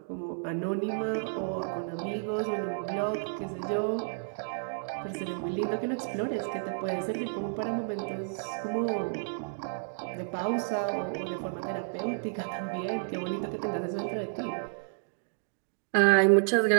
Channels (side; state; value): left; silent; digital silence